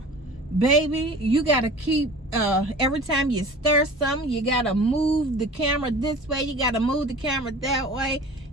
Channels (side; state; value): both; normal; correlation 0.41